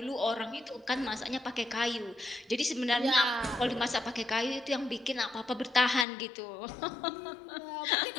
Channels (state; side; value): drops out; right; at 6.1 s